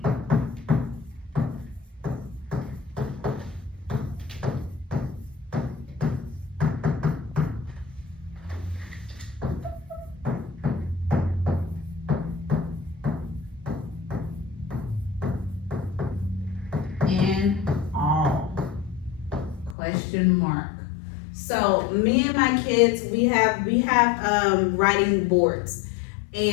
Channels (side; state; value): right; drops out; at 19.8 s